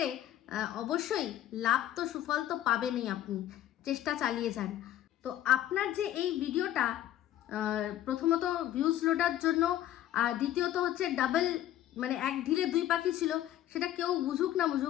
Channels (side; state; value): right; quieter; 12.6 dB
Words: অবশ্যই লাভ তো সুফল তো পাবেনই, আপনি চেষ্টা চালিয়ে যান। তো আপনার যে এই ভিডিওটা প্রথমত ভিউজ লোডার জন্য, আর দ্বিতীয়ত হচ্ছে ডাবল মানে এক ঢিলে দুই পাখি ছিল, সেটা কেউ বুঝুক না